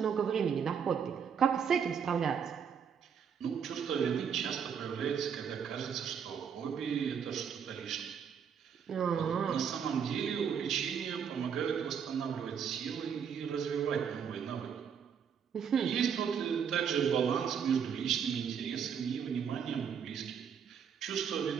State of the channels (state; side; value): quieter; left; 7.4 dB